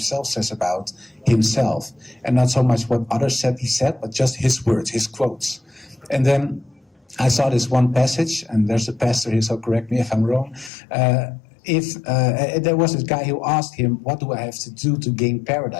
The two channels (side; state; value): right; drops out; at 10.7 s